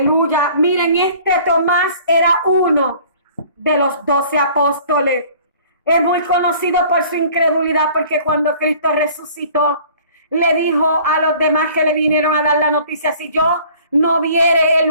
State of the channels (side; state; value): both; inverted; correlation -0.51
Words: Miren, este Tomás era uno de los 12 apóstoles. Es muy conocido por su incredulidad, porque cuando Cristo resucitó, le dijo a los demás que le vinieron a dar la noticia, si yo no viere